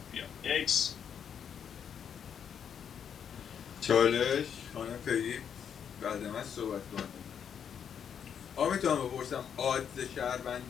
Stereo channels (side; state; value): right; quieter; 7.9 dB